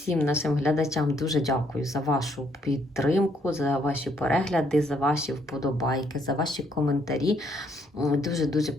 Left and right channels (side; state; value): both; normal; correlation 0.70